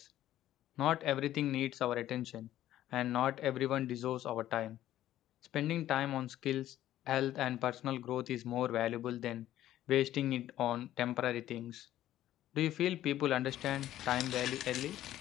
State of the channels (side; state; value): right; quieter; 13.1 dB